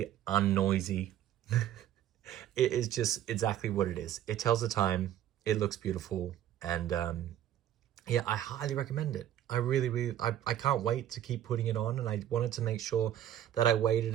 unnoisy. It is just exactly what it is. It tells the time, it looks beautiful, and yeah, I highly recommend it. I really, I can't wait to keep putting it on, and I wanted to make sure that I waited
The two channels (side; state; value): left; quieter; 11.5 dB